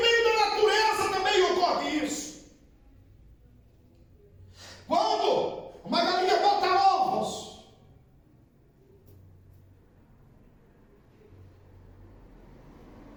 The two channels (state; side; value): identical; both; correlation 1.00